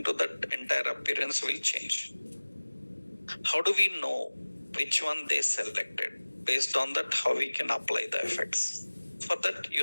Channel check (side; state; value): both; inverted; correlation -1.00